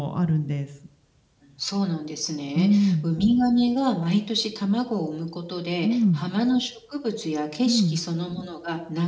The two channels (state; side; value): identical; both; correlation 1.00